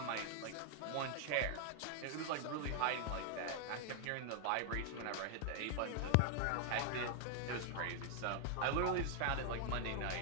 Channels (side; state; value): both; different; correlation 0.00